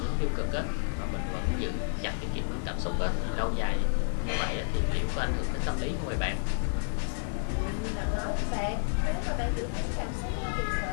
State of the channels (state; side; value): silent; right; digital silence